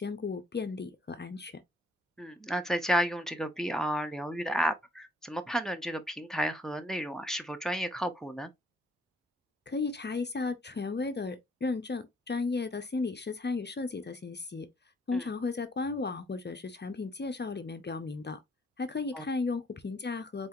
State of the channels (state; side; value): normal; both; correlation 0.66